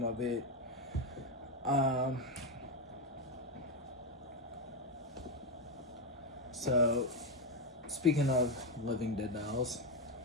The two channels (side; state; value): both; normal; correlation 0.08